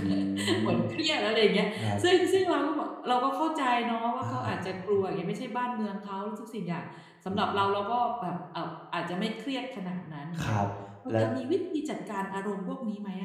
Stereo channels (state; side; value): identical; both; correlation 1.00